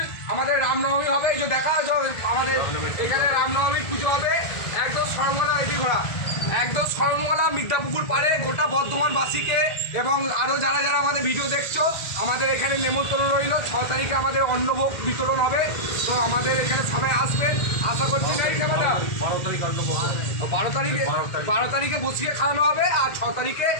আমাদের রামনবমী হবে। এই যে দেখা আমাদের এখানে রামনবমী পুজো হবে একদম সরমলা এটি ঘোরা একদম সরমলা মির্জাপুকুর পাড়ে গোটা বর্ধমানবাসীকে এবং আরও যারা যারা আমাদের ভিডিও দেখছো আমাদের এখানে নেমন্তন্ন রইল। 6 তারিখে আমাদের অন্নভোগ বিতরণ হবে। তো আমাদের এখানে সবাই আসবেন আশা করছি। নেই ক্যামেরা 12 তারিখে বসিয়ে খাওয়ানো হবে আর 6 তারিখে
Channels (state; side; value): late; right; 2.0 ms